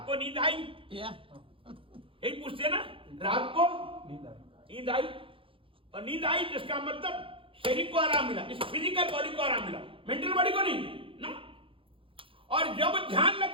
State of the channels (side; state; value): left; late; 0.26 ms